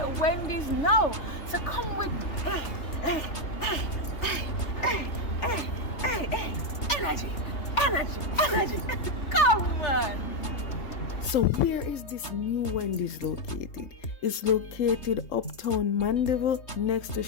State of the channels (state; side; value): late; right; 3.3 ms